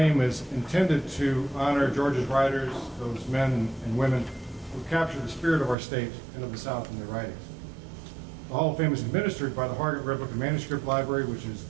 is intended to honor Georgia's writers, those men and women who capture the spirit of our state and of the South in their writings. The Hall of Fame is administered by the Harvard Red Book and Manuscript Library, which is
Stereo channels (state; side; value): drops out; left; at 5.8 s